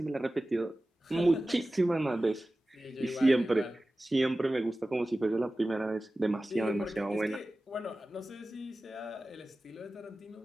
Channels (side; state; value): both; normal; correlation 0.96